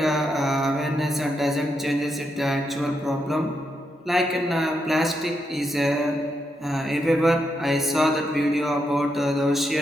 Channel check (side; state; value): both; normal; correlation 0.82